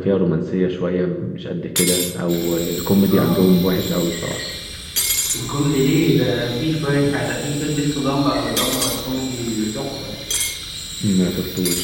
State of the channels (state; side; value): identical; both; correlation 1.00